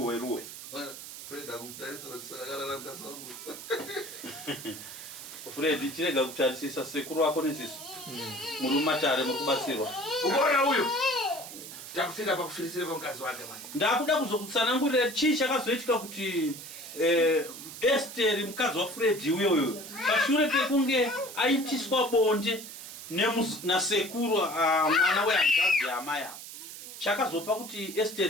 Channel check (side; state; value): right; noise; hiss, 12 dB below the sound